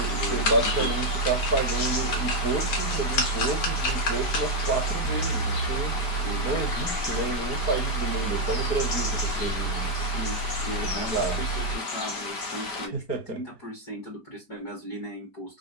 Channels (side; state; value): right; late; 5.0 ms